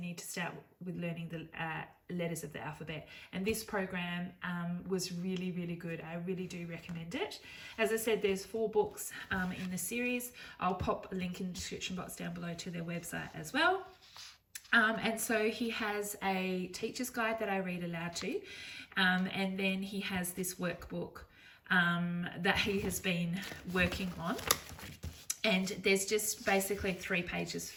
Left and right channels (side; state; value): both; identical; correlation 1.00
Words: to start with learning the letters of the alphabet, and this program was really, really good. I really do recommend it. As I said, there's 4 books in the series. I'll pop a link in the description box down below to their website as well. And so he has a teacher's guide that I read aloud to, and then he has this workbook that he has been working on. And there's just basically 3 pages